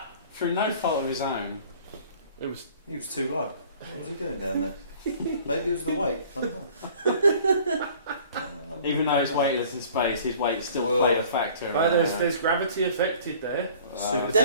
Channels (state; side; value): inverted; both; correlation -0.51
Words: Through no fault of his own. It was He was too low. What was he doing down there? Maybe it was the weight. I don't know. Even though he's weightless in space, his weight still Well, played a factor. there's gravity affected there. Super